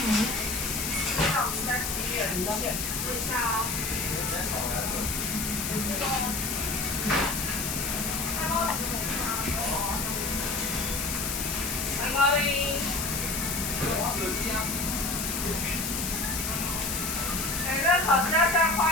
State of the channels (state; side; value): noise; left; hiss, 2 dB below the sound